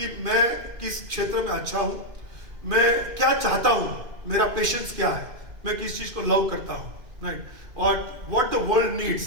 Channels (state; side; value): late; left; 2.5 ms